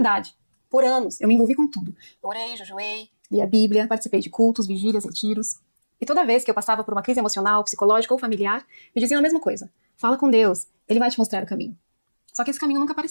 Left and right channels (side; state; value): both; inverted; correlation -1.00